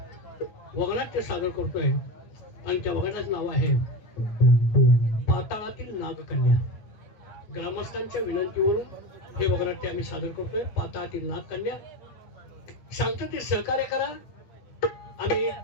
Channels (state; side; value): late; right; 9.3 ms